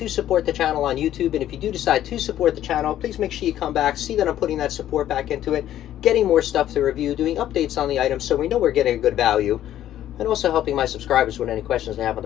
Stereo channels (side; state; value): right; quieter; 12.1 dB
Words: support the channel on YouTube. And if you do decide to support the channel, please make sure you come back, see that I'm putting that support back into it, getting more stuff to review, doing updates on the items so we know we're getting a good value, and also helping my subscribers with any questions they have on